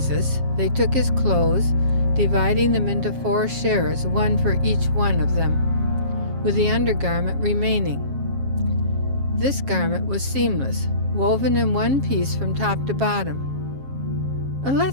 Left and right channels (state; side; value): late; left; 7.4 ms